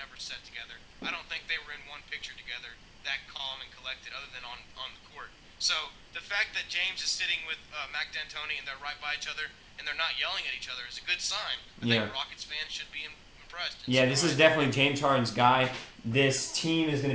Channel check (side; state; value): both; identical; correlation 1.00